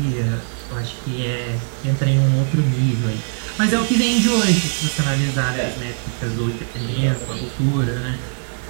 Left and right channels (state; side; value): silent; left; digital silence